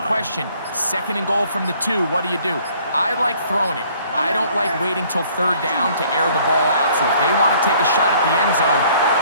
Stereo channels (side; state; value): both; inverted; correlation -0.58